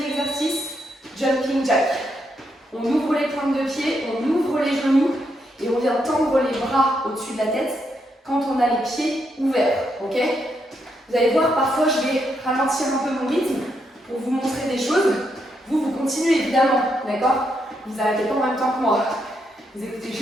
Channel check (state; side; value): normal; both; correlation 0.79